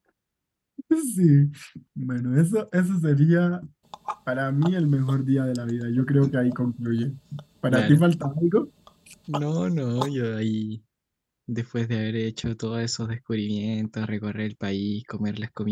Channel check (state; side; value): identical; both; correlation 1.00